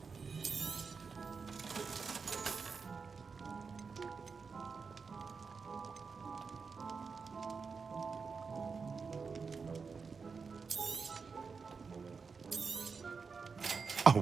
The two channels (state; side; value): quieter; left; 5.1 dB